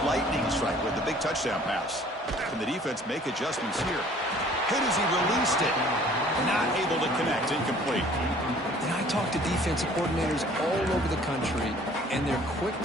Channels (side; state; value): both; normal; correlation 0.53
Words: lightning strike with the big touchdown pass. Can the defense make adjustments here? Hit as he released it. Not able to connect. Incomplete. And I talk to defensive coordinators all over the country, and they're quick